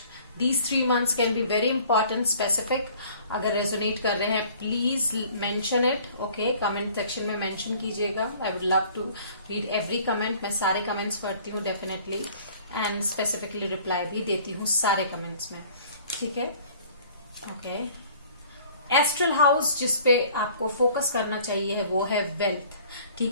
These 3 months can be very important, specific. अगर resonate कर रहे हैं please mention it. Okay, comment section में मेंशन कीजिएगा। I would love to read every comment. मैं सारे comments पढ़ती हूँ डेफिनेटली, एंड स्पेसिफिकली रिप्लाई भी देती हूँ सारे कमेंट्स में। ठीक है, ओके, एस्ट्रल हाउस जिसपे आपको फोकस करना चाहिए वो है वेल्थ,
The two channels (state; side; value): inverted; both; correlation -0.53